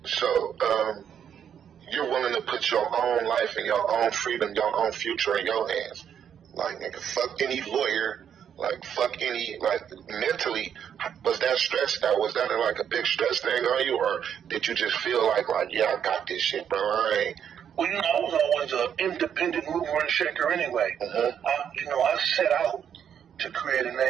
So, you're willing to put your own life and your own freedom, your own future in your hands. Like, nigga, fuck any lawyer. Like, fuck any, like, mentally, was that stressed out? Was that like a big stress thing on you? Or did you just feel like, yeah, I got this shit, bro? I was always an independent mover and shaker anyway. I set out to create a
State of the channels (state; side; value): quieter; left; 8.6 dB